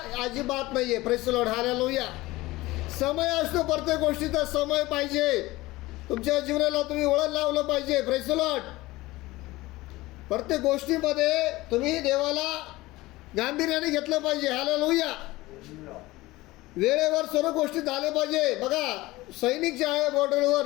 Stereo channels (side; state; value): right; quieter; 19.5 dB